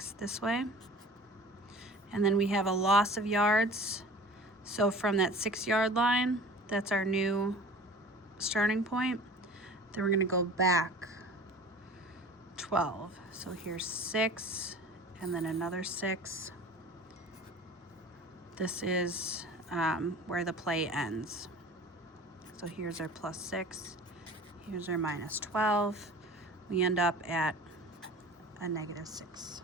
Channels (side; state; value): both; normal; correlation 0.42